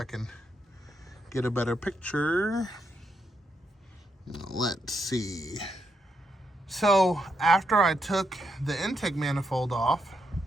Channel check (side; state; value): both; normal; correlation 0.80